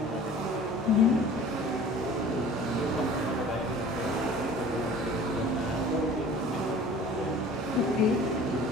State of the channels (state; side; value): normal; both; correlation 0.45